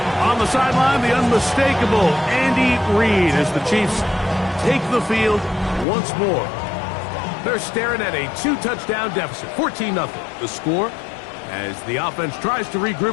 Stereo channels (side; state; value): right; drops out; at 5.9 s